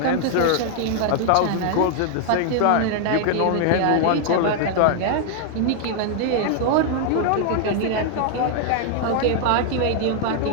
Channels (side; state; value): both; different; correlation 0.00